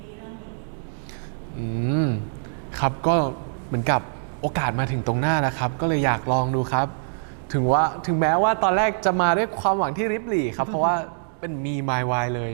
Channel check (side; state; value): left; silent; digital silence